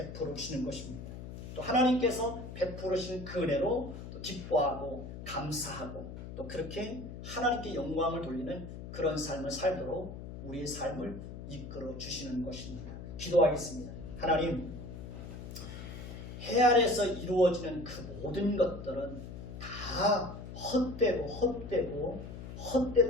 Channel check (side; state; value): left; noise; hum, 10 dB below the sound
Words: 주시는 것입니다. 또 하나님께서 베풀어 주신 그 은혜로 또 기뻐하고 감사하고 또 그렇게 하나님께 영광을 돌리는 그런 삶을 살도록 우리의 삶을 이끌어 주시는 것입니다. 기도하겠습니다. 하나님, 해 아래에서 이루어지는 그 모든 것들은 다 헛되고